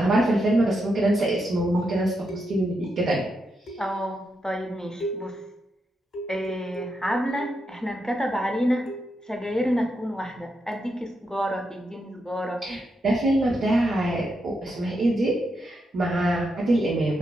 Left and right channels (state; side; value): normal; both; correlation 0.83